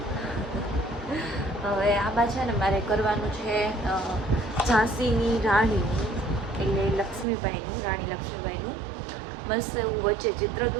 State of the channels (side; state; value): left; drops out; at 7.2 s